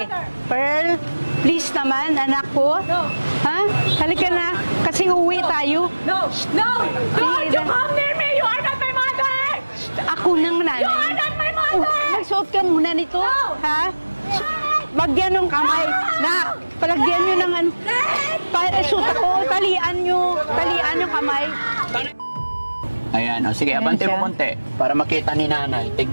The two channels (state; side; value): inverted; both; correlation -1.00